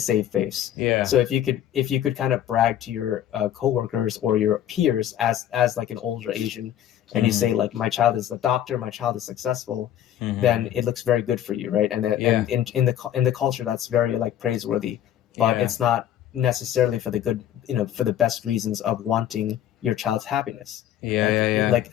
face. Yeah. So if you could kind of brag to your coworkers or your peers as like an older Asian, and you Hmm. say like my child is a doctor, my child is successful, Hmm. then it looks very good for you, right? And Yeah. in the culture, that's very like praiseworthy, but Yeah. it's not necessarily for the good, for the best reasons of wanting your child's happiness. Yeah. Like Yeah. Yeah. like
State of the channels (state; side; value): quieter; right; 11.2 dB